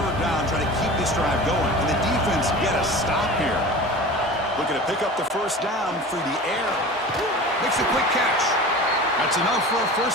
down, trying to keep this drive going. And the defense get a stop here. Looking to pick up the 1st down through the air. Makes a quick catch. That's enough for a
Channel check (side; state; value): both; normal; correlation 0.36